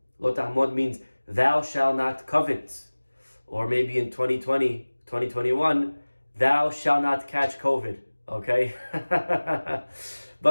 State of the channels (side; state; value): both; inverted; correlation -1.00